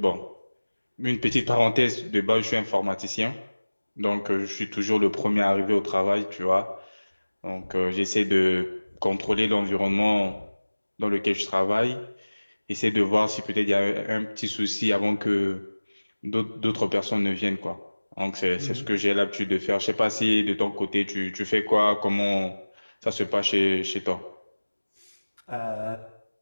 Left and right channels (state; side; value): inverted; both; correlation -1.00